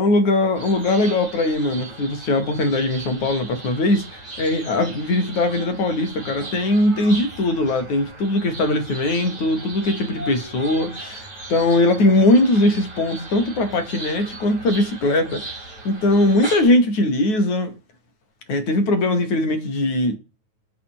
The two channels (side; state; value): right; late; 9.3 ms